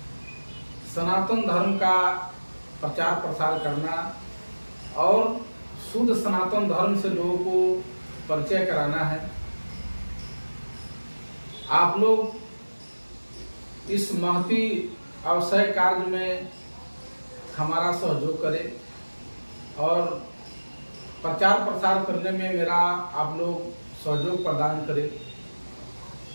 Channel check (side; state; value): both; inverted; correlation -1.00